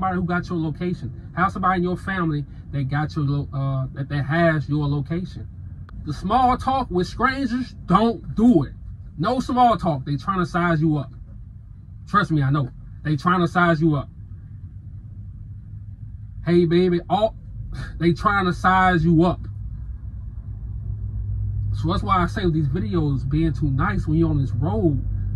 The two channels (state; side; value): identical; both; correlation 1.00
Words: who got your location. Have somebody in your family that got your that has your location. The small talk with strangers, don't do it. No small talk. They trying to size you up. Trust me, I know. They trying to size you up. Hey, baby. They trying to size you up. So that's why I say with these videos being too nice when you're on this road,